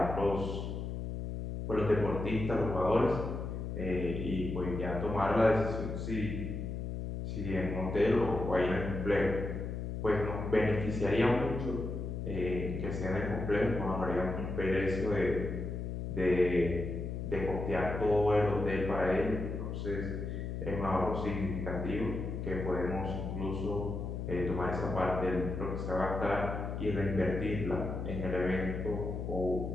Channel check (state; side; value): noise; left; hum, 4 dB below the sound